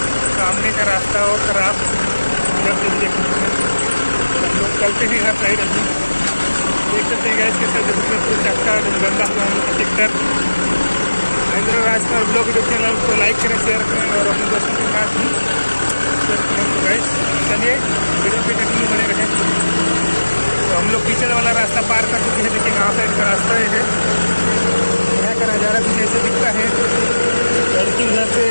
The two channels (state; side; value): inverted; both; correlation -1.00